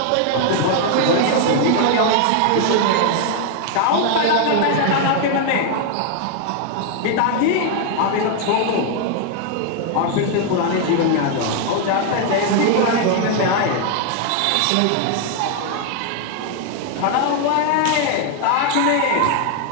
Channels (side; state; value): both; different; correlation 0.00